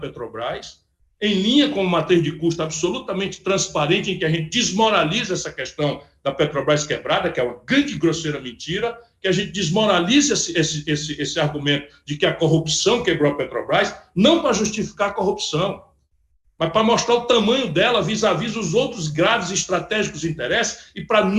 em linha com uma matriz de custo absolutamente transparente, em que a gente desmoraliza essa questão da Petrobras quebrada, que é uma grande e grosseira mentira, que a gente desmoraliza esse argumento de que a corrupção quebrou a Petrobras, não para justificar a corrupção, mas para mostrar o tamanho dela vis-à-vis os outros graves e estratégicos interesses e para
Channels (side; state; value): both; identical; correlation 1.00